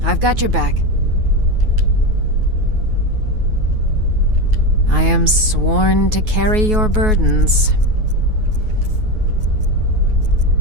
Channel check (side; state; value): left; late; 9.4 ms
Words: I've got your back. I am sworn to carry your burdens.